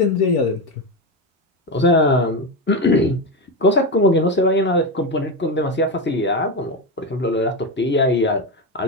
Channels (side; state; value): both; normal; correlation 0.14